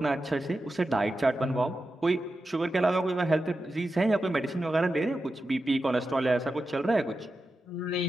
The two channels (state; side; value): normal; both; correlation 0.91